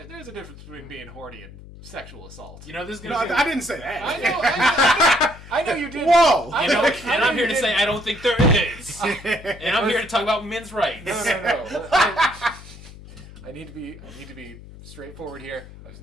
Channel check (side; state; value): left; noise; hum, 17 dB below the sound